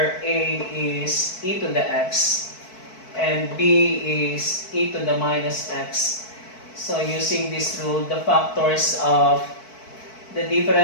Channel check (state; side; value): late; right; 4.6 ms